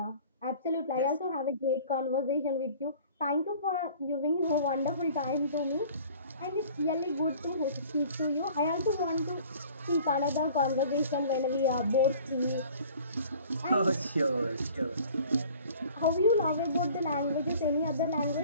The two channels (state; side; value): inverted; both; correlation -0.49